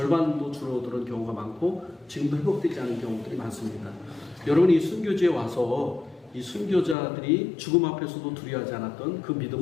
줄어드는 경우가 많고 지금도 회복되지 않은 경우들이 많습니다. 여러분이 순교지에 와서 이 순교자들이 죽음 앞에서도 두려워하지 않았던 그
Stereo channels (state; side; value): drops out; right; at 7.0 s